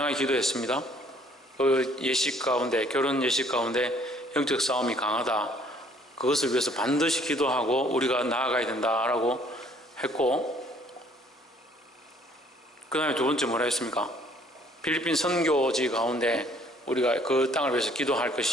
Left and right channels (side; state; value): both; normal; correlation 0.60